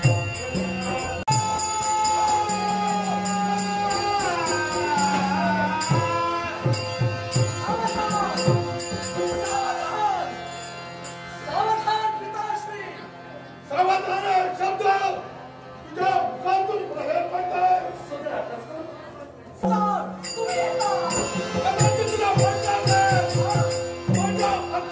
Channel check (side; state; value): both; identical; correlation 1.00